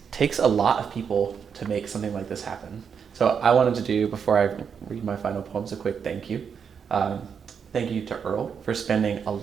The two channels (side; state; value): left; quieter; 6.8 dB